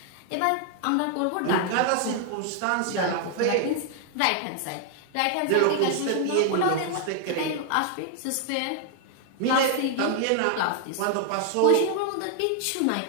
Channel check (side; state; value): both; different; correlation 0.00